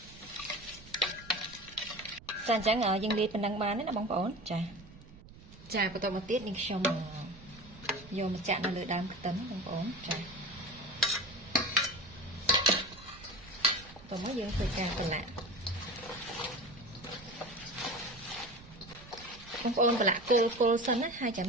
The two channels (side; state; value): right; noise; rumble, 20 dB below the sound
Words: អញ្ចឹងយើងលាយប៉ុណ្ណឹងបានណាបងប្អូនចាបន្ទាប់មកទៀតនេះខ្ញុំយកមកចាក់នៅលើដើមខ្ទឹមបងប្អូនចាបន្ទាប់មកយើងធ្វើការប្រឡាក់បងប្អូនប្រឡាក់គឺគល់សិនណាហើយចាំ